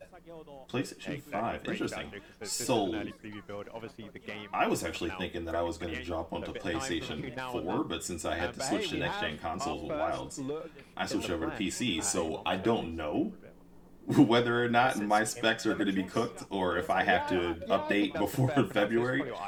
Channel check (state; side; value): identical; both; correlation 1.00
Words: PlayStation 5, interesting. So, I was actually thinking that I was going to jump onto PlayStation 4, but since I had to switch to next-gen consoles with Wilds, I switched over to PC, so I don't know whether or not my specs are going to be cooked or if I have to update before February,